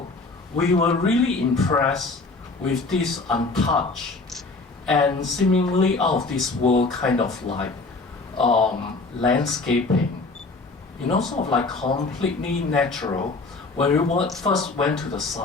we were really impressed with this untouched and seemingly out of this world kind of like landscaping, you know, sort of like completely natural when we first went to the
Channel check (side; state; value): right; quieter; 3.6 dB